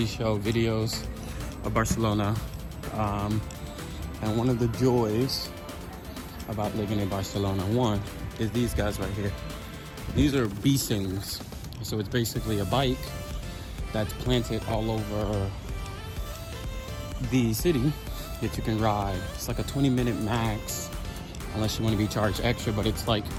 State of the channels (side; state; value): both; identical; correlation 1.00